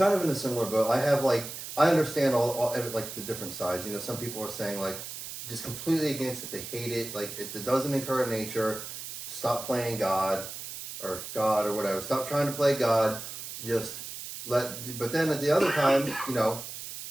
of in a similar boat. I understand all like the different sides. You know, some people are saying like just completely against it. They hate it. Like it doesn't encourage nature. Stop playing God or whatever. Stop trying to play God. But then at the other time, you know,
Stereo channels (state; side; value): noise; right; hiss, 9 dB below the sound